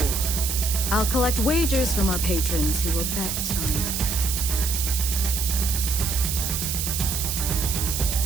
I'll collect wagers from our patrons who will bet on...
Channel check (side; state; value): right; noise; hiss, 2 dB below the sound